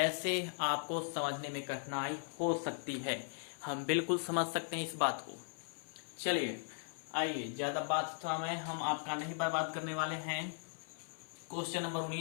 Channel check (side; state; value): right; silent; 52 dB below the other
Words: आपको समझने में कठिनाई हो सकती है, हम बिल्कुल समझ सकते हैं इस बात को। चलिए आइए, ज्यादा बात तो हम आपका नहीं बर्बाद करने वाले हैं। क्वेश्चन नंबर